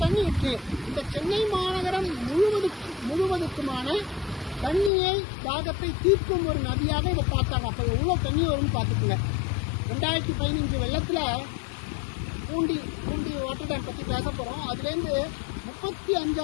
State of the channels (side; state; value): right; drops out; at 4.9 s